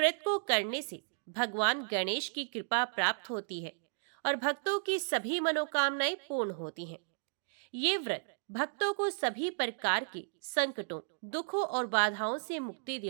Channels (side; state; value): left; silent; digital silence